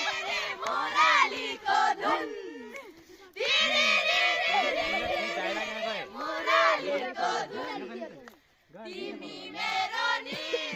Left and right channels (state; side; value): identical; both; correlation 1.00